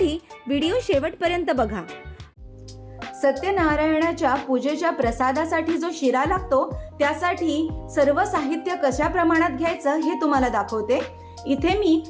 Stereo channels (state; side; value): identical; both; correlation 1.00